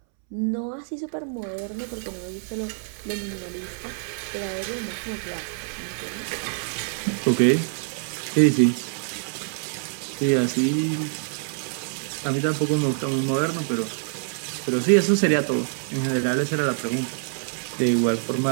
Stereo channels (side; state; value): left; silent; 61 dB below the other